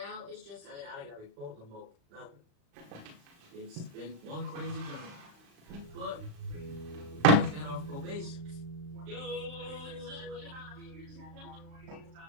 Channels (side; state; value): left; late; 35 ms